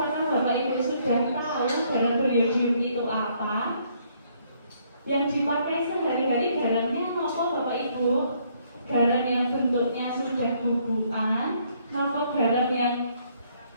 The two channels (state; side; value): inverted; both; correlation -0.68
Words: Bapak Ibu sudah tahu garam beriodium itu apa? Yang dipakai sehari-hari garamnya apa Bapak Ibu? Garam yang bentuknya sudah bubukan, atau garam yang